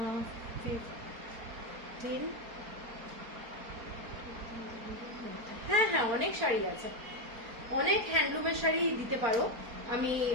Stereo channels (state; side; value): late; left; 4.4 ms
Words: 15। হ্যাঁ হ্যাঁ, অনেক শাড়ি আছে, অনেক হ্যান্ডলুমের শাড়ি দিতে পারো। আমি